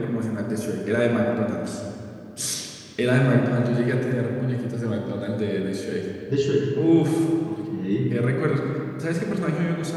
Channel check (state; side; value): identical; both; correlation 1.00